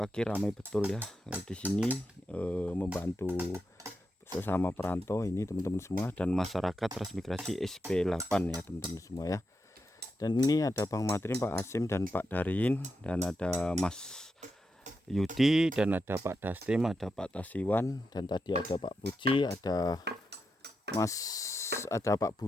ramai betul ya di sini membantu sesama perantau ini teman-teman semua, dan masyarakat transmigrasi SP8 ya teman-teman semua ya. Dan ini ada Bang Matrin, Pak Asim dan Pak Darin, dan ada Mas Yudi, dan ada Pak Dastim, ada Pak Tasiwan, dan tadi ada Pak Puji, ada Pak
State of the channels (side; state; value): both; normal; correlation 0.86